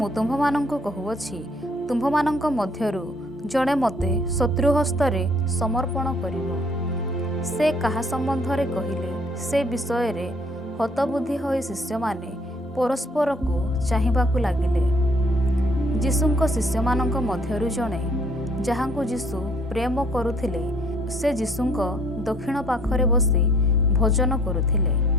ତୁମ୍ଭମାନଙ୍କୁ କହୁଅଛି, ତୁମ୍ଭମାନଙ୍କ ମଧ୍ୟରୁ ଜଣେ ମୋତେ ଶତ୍ରୁହସ୍ତରେ ସମର୍ପଣ କରିବ। ସେ କାହା ସମ୍ବନ୍ଧରେ କହିଲେ ସେ ବିଷୟରେ ହତବୁଦ୍ଧି ହୋଇ ଶିଷ୍ୟମାନେ ପରସ୍ପରକୁ ଚାହିଁବାକୁ ଲାଗିଲେ। ଯୀଶୁଙ୍କ ଶିଷ୍ୟମାନଙ୍କ ମଧ୍ୟରୁ ଜଣେ, ଯାହାଙ୍କୁ ଯୀଶୁ ପ୍ରେମ କରୁଥିଲେ, ସେ ଯୀଶୁଙ୍କ ଦକ୍ଷିଣ ପାଖରେ ବସି ଭୋଜନ କରୁଥିଲେ।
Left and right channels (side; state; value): both; normal; correlation 0.60